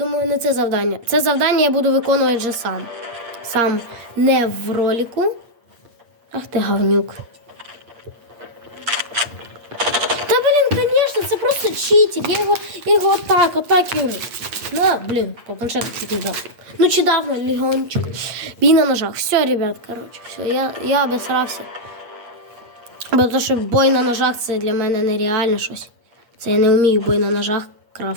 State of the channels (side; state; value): left; late; 8.5 ms